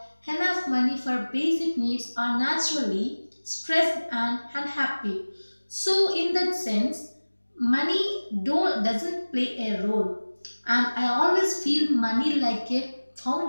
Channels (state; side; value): inverted; both; correlation -1.00